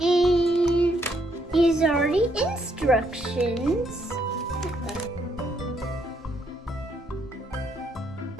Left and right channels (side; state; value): both; normal; correlation 0.73